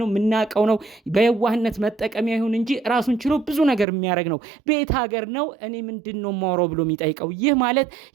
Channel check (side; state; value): left; drops out; at 3.9 s